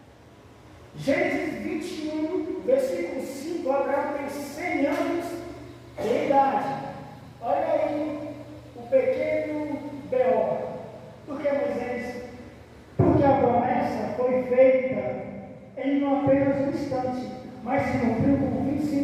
Gênesis 21, versículo 5, Abraão tem 100 anos de idade. Olha aí o pequeno B.O. Por que, Moisés? Porque a promessa foi feita em apenas um instante, mas se cumpriu com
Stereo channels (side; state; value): both; identical; correlation 1.00